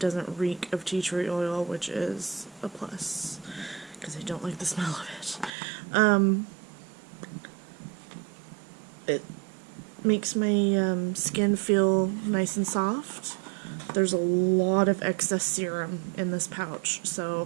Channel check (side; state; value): left; drops out; at 5.5 s